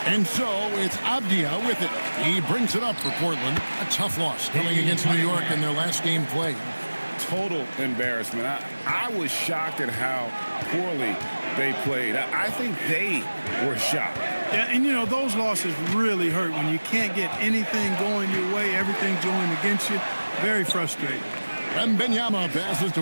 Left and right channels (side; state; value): both; inverted; correlation -1.00